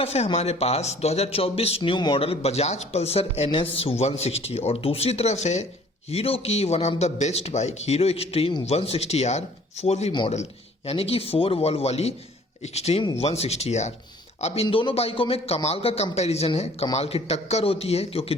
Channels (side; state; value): both; normal; correlation 0.54